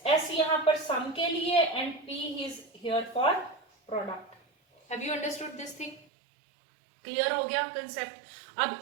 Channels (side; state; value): left; drops out; at 6.1 s